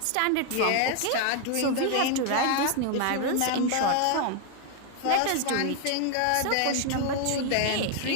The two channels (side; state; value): both; different; correlation 0.00